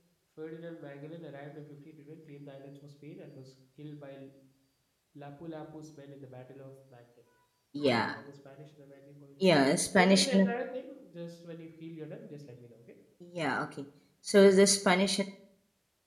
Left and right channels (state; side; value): identical; both; correlation 1.00